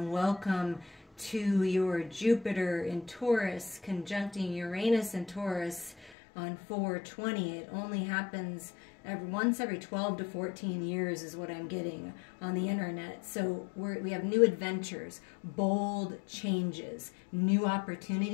welcome to your Jupiter in Taurus conjuncting Uranus in Taurus on 4/20. It only happens once every 12 to 14 years is what I'm getting on the internet. So we have new adventures, bold changes, new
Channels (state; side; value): drops out; right; at 6.1 s